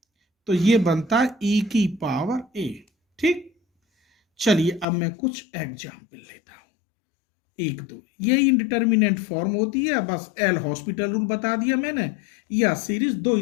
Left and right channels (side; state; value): right; drops out; at 4.9 s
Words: तो ये बनता है e की पावर a, ठीक। चलिए अब मैं कुछ एग्जाम्पल लेता हूं, एक दो, ये इंडिटर्मिनेंट फॉर्म होती है, बस एल हॉस्पिटल रूल बता दिया मैंने, या सीरीज दो